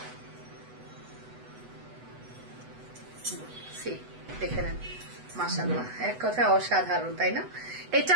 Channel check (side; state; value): left; late; 8.0 ms